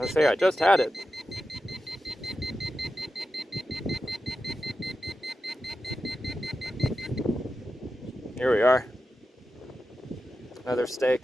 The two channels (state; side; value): normal; both; correlation 0.91